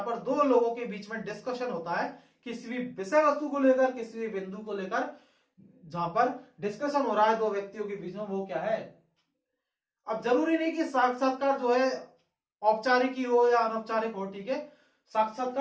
पर दो लोगों के बीच में डिस्कशन होता है किसी भी विषय वस्तु को लेकर, किसी भी बिंदु को लेकर, जहां पर डिस्कशन हो रहा है दो व्यक्तियों के बीच में, वो क्या है? अब जरूरी नहीं कि साक्षात्कार जो है औपचारिक ही हो या अनौपचारिक हो। ठीक है,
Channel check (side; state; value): both; identical; correlation 1.00